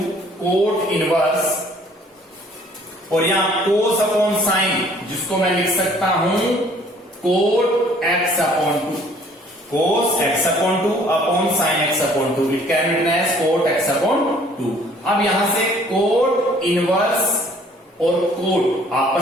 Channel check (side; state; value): both; normal; correlation 0.57